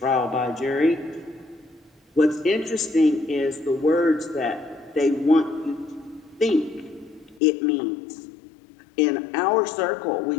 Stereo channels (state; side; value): drops out; right; at 7.4 s